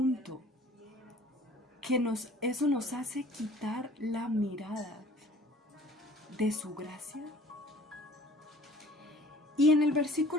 que eso nos hace quitar la mirada de su gracia? Y en el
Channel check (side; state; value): both; normal; correlation 0.50